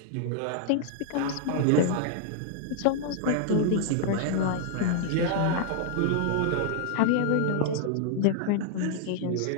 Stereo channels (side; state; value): both; different; correlation 0.00